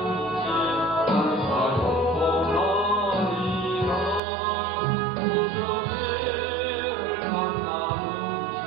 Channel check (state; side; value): drops out; left; at 4.2 s